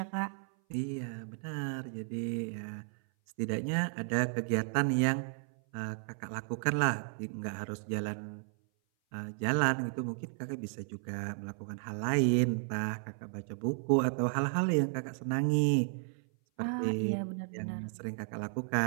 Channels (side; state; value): left; silent; 55 dB below the other